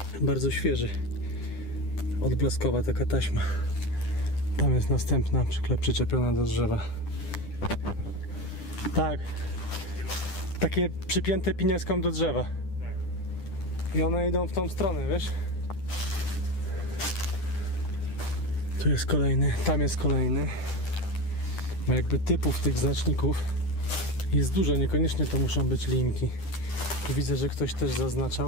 Bardzo świeży. Odblaskowa taka taśma. Tam jest następna przyczepiona do drzewa. Tak. Takie przypięte pinieską do drzewa. I one idą w tą stronę, wiesz? Tu jest kolejny, tam jest kolejny. Ma jakby typów tych znaczników jest dużo, niekoniecznie to muszą być linki. Tu widzę, że ktoś też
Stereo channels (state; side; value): late; right; 10 ms